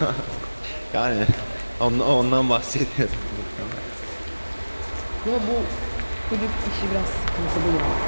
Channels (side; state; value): both; inverted; correlation -1.00